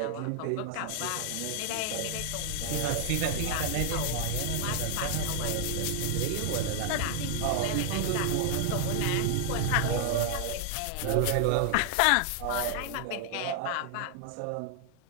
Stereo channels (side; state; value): both; different; correlation 0.00